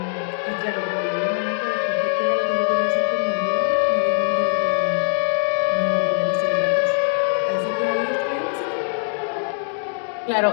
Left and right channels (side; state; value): right; silent; digital silence